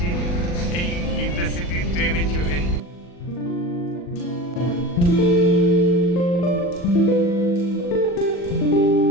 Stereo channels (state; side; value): late; right; 40 ms